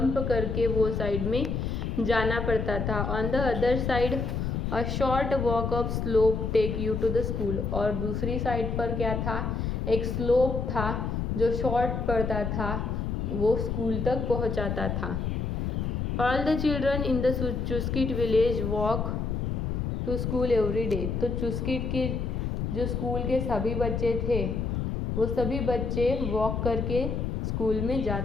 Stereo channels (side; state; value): left; noise; rumble, 1 dB below the sound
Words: करके वो साइड में जाना पड़ता था। On the other side a short walk up slope take you to the school. और दूसरी साइड पर क्या था? एक स्लोप था जो शॉर्ट पड़ता था, वो स्कूल तक पहुंचाता था। All the children in the Chuskit village walk to school every day. तो चुस्किट के जो स्कूल के सभी बच्चे थे वो सभी बच्चे वॉक करके स्कूल में